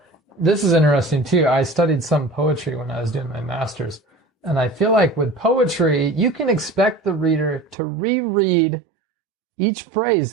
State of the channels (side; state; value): left; drops out; at 7.8 s